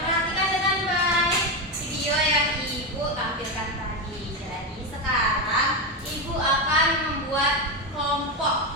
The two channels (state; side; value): normal; both; correlation 0.12